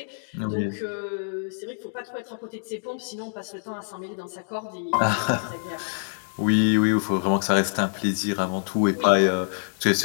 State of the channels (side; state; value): right; silent; digital silence